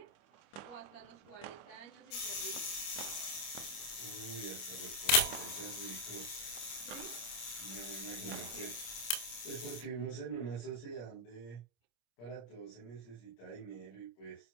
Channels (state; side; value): late; right; 25 ms